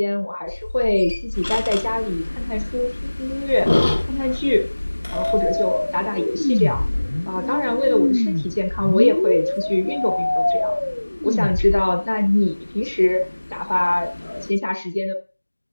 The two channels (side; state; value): both; inverted; correlation -1.00